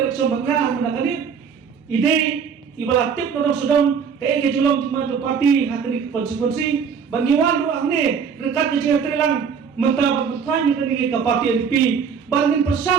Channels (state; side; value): quieter; left; 6.6 dB